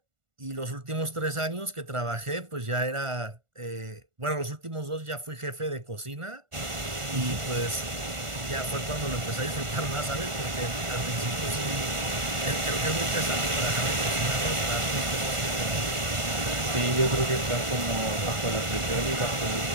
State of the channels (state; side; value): late; left; 1.4 ms